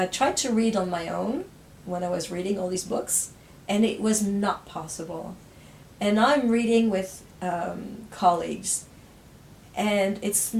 tried to read on my own when I was reading all these books, and it was not possible. And I'm reading with colleagues, and it's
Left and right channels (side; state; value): both; identical; correlation 1.00